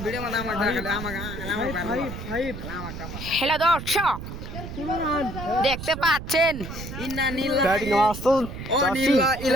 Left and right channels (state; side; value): noise; right; rumble, 9 dB below the sound